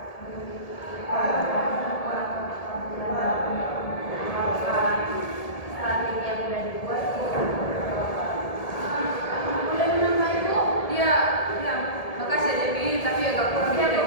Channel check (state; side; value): late; right; 1.7 ms